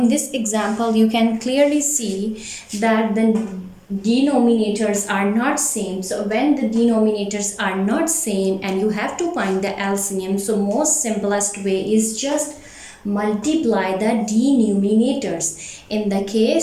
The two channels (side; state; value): both; identical; correlation 1.00